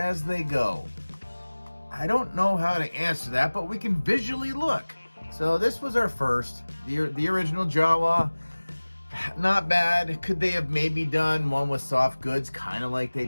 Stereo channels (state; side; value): inverted; both; correlation -1.00